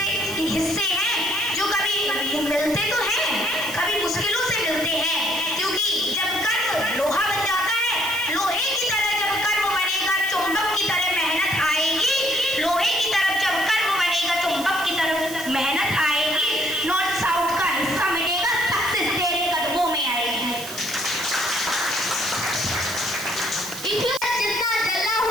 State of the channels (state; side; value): noise; right; hiss, 11 dB below the sound